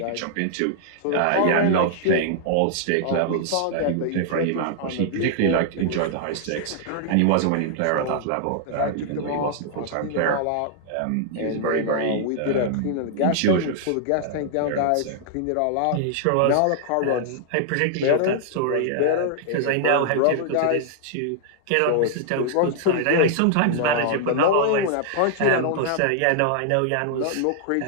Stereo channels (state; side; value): different; both; correlation -0.01